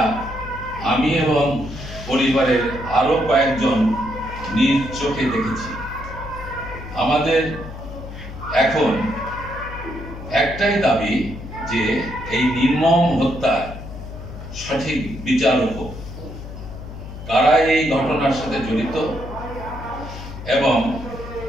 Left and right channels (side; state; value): left; noise; hum, 11 dB below the sound